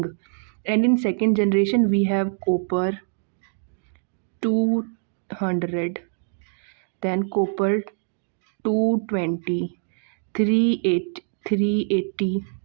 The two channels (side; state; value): left; silent; digital silence